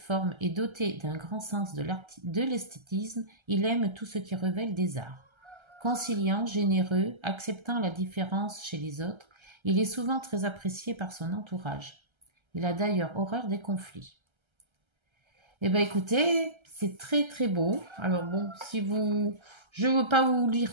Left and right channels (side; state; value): left; late; 1.3 ms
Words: et doté d'un grand sens de l'esthétisme, il aime tout ce qui révèle des arts. Conciliant, généreux, acceptant la différence chez les autres, il est souvent très apprécié par son entourage. Il a d'ailleurs horreur des conflits. Eh bien écoutez, c'est très très beau. Alors bon, je ne veux pas vous